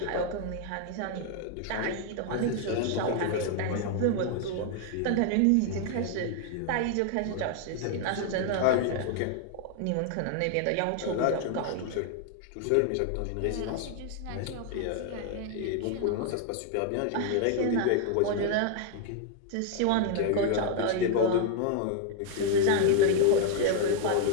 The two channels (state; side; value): different; both; correlation 0.00